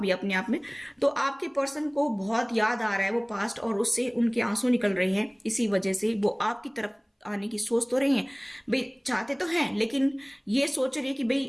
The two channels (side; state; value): both; identical; correlation 1.00